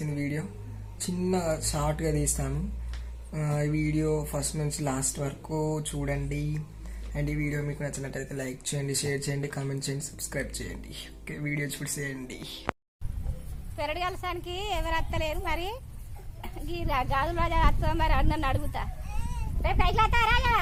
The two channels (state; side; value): identical; both; correlation 1.00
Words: వీడియో. చిన్న షార్ట్గా తీసాము. ఈ వీడియో ఫస్ట్ నుంచి లాస్ట్ వరకు చూడండి. అండ్ ఈ వీడియో మీకు నచ్చినట్టయితే లైక్ చేయండి, షేర్ చేయండి, కామెంట్ చేయండి, సబ్స్క్రైబ్ చేయండి. ఓకే, వీడియో చూసేయండి. పెరడు కలసానికి ఎవరు అత్తలేరు. మరి ఈ గాజులు రాజా అత్త మరి అన్నన్ను అడుగుతా. రేపు పైసలు అత్తా రాజా?